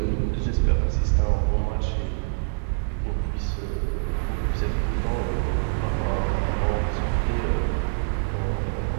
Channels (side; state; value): left; silent; digital silence